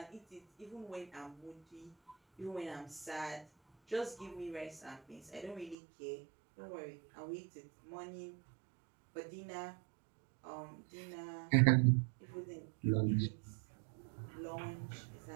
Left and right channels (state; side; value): drops out; left; at 5.8 s